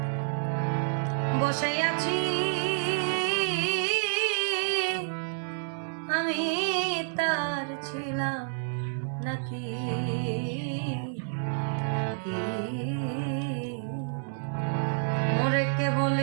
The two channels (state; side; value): silent; left; 59 dB below the other